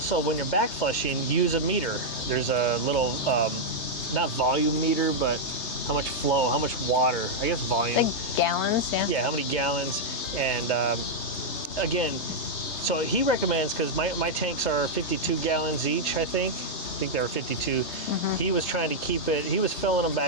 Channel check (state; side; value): late; right; 3.3 ms